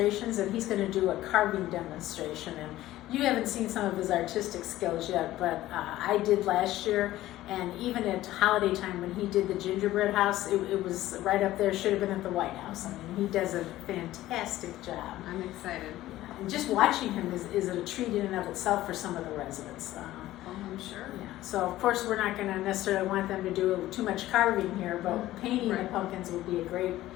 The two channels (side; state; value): right; quieter; 15.3 dB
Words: and he's going to do a carving demonstration. And you haven't seen some of his artistic skills yet, but I did last year. And even at holiday time when he did the gingerbread house, it was right up there, should have been at the White House. I mean, he does a fantastic job. I'm excited. Yeah. And just watching him is a treat in and of itself for some of the residents. Oh, I'm sure. Yeah. So of course we're not going to necessarily want them to do too much carving here, but painting the pumpkins would be a great